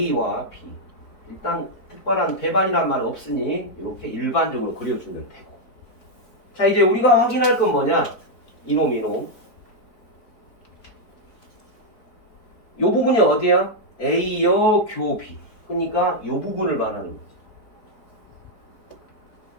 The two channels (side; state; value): right; late; 4.3 ms